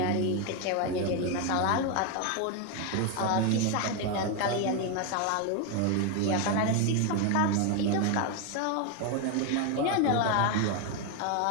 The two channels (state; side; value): different; both; correlation 0.01